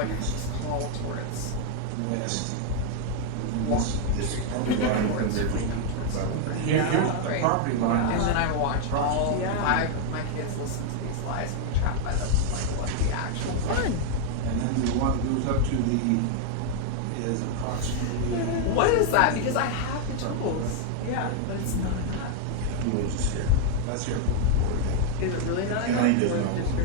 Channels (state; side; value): different; both; correlation 0.00